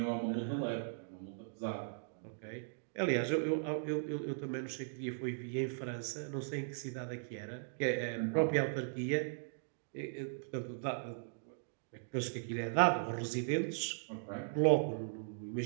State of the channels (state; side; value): silent; left; digital silence